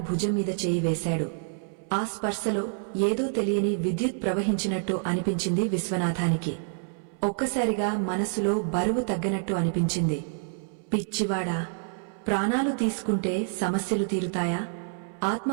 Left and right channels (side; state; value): left; silent; 60 dB below the other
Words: భుజం మీద చేయి వేశాడు. ఆ స్పర్శలో ఏదో తెలియని విద్యుత్ ప్రవహించినట్టు అనిపించింది విశ్వనాథానికి. ఒక్కసారిగా మనసులో బరువు తగ్గినట్టు అనిపించింది. పిచ్చివాడా, ప్రాణాలు తీసుకుంటే సమస్యలు తీరుతాయా?